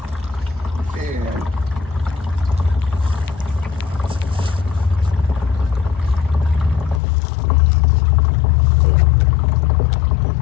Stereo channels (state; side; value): drops out; right; at 7.0 s